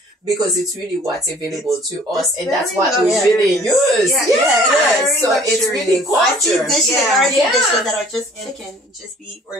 Because it's really what's available to us, and that's what we really use. So it's really culture. I see dishes that are just chicken, just beef,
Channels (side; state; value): both; normal; correlation 0.54